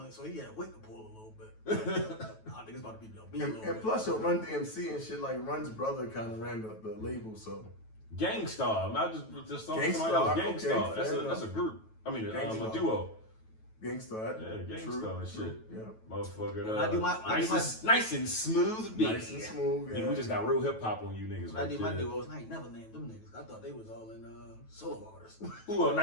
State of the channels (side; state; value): right; late; 9.2 ms